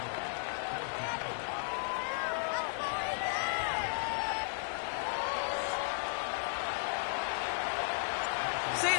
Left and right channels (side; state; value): right; silent; digital silence